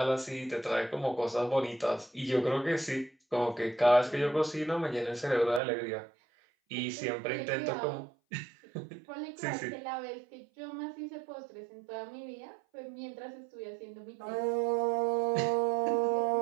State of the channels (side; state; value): left; drops out; at 5.6 s